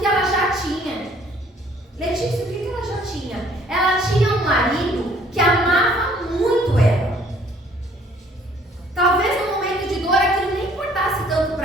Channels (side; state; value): both; normal; correlation 0.59